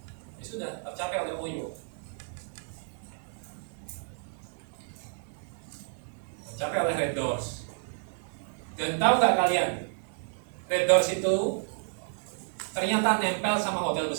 Ini sudah tercapai oleh Oyo. Tercapai oleh Red Doors. Dan tahu nggak kalian? Red Doors itu ternyata nempel sama hotel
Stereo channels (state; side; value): silent; left; 57 dB below the other